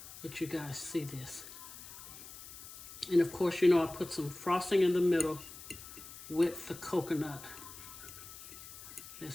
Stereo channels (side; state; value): left; noise; hiss, 14 dB below the sound